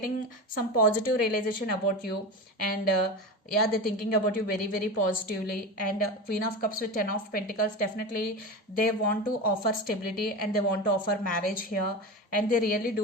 some positive realization about you, and yeah, they're thinking about you very very positively. And Queen of Cups with Ten of Pentacles, definitely they want to offer stability, and they want to offer marriage here, and they really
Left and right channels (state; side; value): normal; both; correlation 0.25